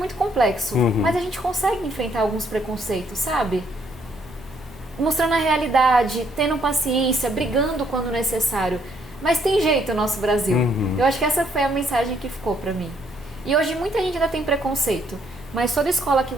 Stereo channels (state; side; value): normal; both; correlation 0.70